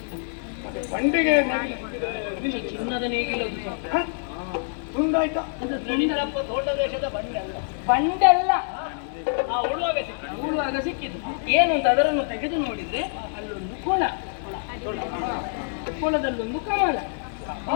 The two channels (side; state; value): right; silent; digital silence